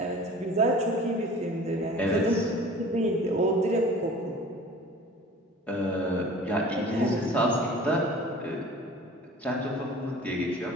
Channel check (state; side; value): normal; both; correlation 0.43